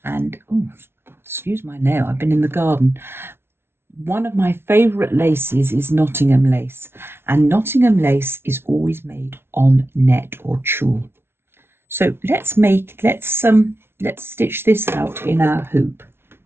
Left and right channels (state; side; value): late; left; 0.12 ms